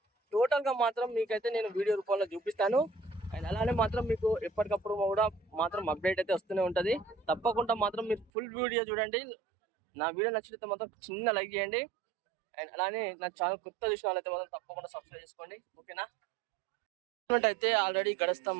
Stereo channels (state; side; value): drops out; left; at 8.3 s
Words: టోటల్గా మాత్రం మీకైతే నేను వీడియో రూపంలో చూపిస్తాను. అండ్ అలానే మాత్రం మీకు ఎప్పటికప్పుడు కూడా మాత్రం అప్డేట్ అయితే వస్తూనే ఉంటుంది. తప్పకుండా మాత్రం మీరు ఫుల్ వీడియో చూడండి. నా వీడియో నచ్చితే మాత్రం చిన్న లైక్ చేయండి. అండ్ అలానే నా ఛానల్ కొత్త చూసిన వాళ్ళైతే మాత్రం తప్పకుండా సబ్స్క్రైబ్ చేసుకోండి, ఓకేనా. అయితే ఆల్రెడీ